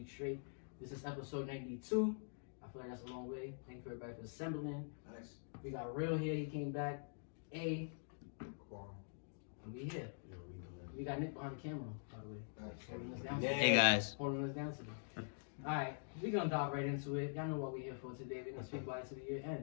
straight. This is episode 92. I feel like that's a long way. Thank you everybody for assembling. Nice. We got Real here. He came back. And we here. We got Nick behind the camera, by the way. Holding us down today. Hey guys. Holding us down today. Alright, we're gonna dive right into it. Y'all know what we're here for today. We're gonna speak about it till the year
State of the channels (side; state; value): right; silent; digital silence